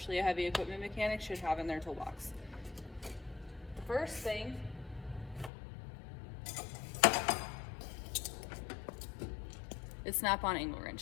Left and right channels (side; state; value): right; drops out; at 5.5 s